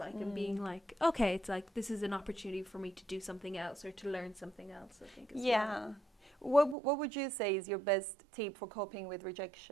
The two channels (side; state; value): left; drops out; at 6.8 s